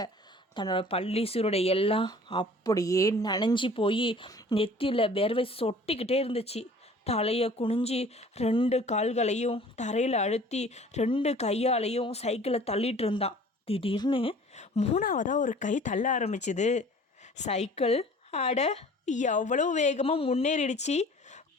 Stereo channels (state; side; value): normal; both; correlation 0.48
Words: தன்னோட பள்ளி சீருடை எல்லாம் அப்படியே நனைஞ்சி போய் நெத்தியில் வேர்வை சொட்டிக்கிட்டே இருந்துச்சு. தலையை குனிஞ்சி 2 கால்களையும் தரையில் அழுத்தி 2 கையாலையும் சைக்கிளை தள்ளிட்டு இருந்தான். திடீர்னு 3ஆவதாக ஒரு கை தள்ள ஆரம்பிச்சுது. சைக்கிள் அட எவ்வளோ வேகமாக முன்னேறிடுச்சு.